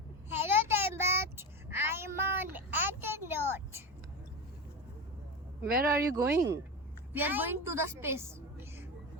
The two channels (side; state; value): both; normal; correlation 0.21